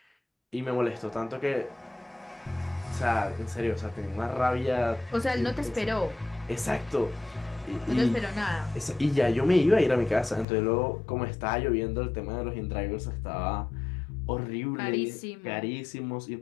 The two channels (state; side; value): drops out; right; at 10.5 s